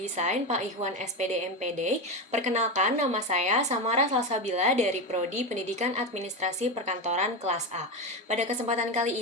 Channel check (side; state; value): both; normal; correlation 0.16